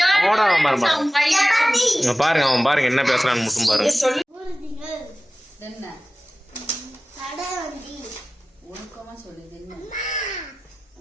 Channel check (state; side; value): normal; both; correlation 0.97